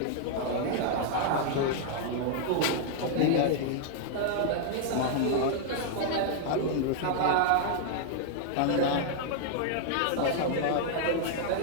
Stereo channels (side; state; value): both; different; correlation -0.01